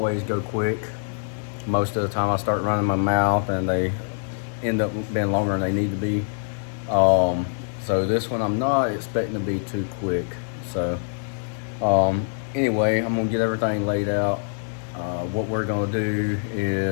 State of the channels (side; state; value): right; silent; digital silence